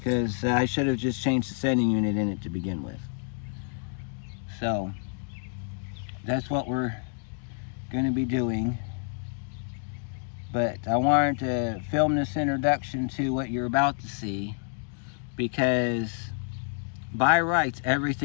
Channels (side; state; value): right; silent; 56 dB below the other